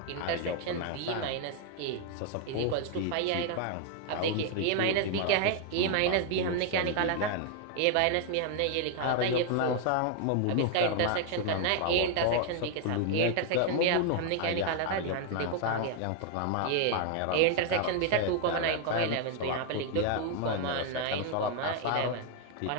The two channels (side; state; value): both; different; correlation 0.00